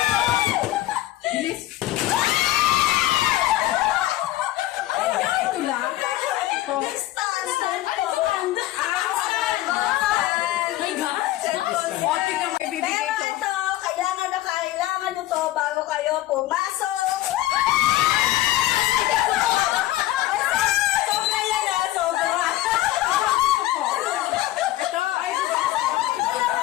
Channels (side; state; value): right; quieter; 15.5 dB